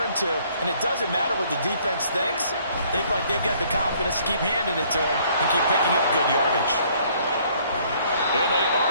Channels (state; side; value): inverted; both; correlation -0.62